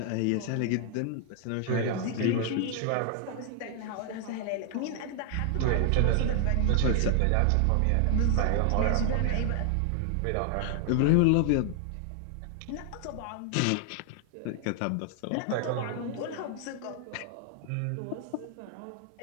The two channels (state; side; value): different; both; correlation 0.00